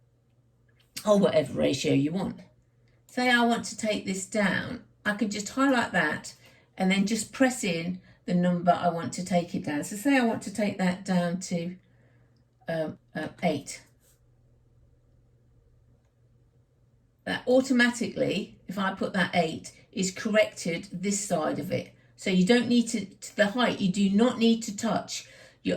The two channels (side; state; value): both; identical; correlation 1.00